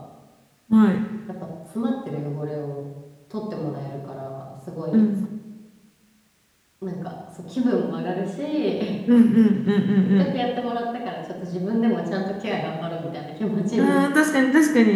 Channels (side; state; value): both; identical; correlation 1.00